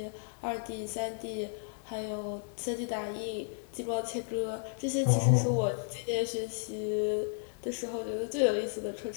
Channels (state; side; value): silent; right; digital silence